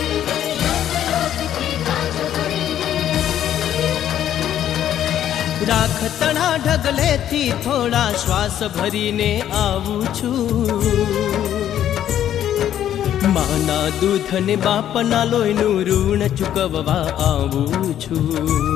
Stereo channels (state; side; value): quieter; right; 10.9 dB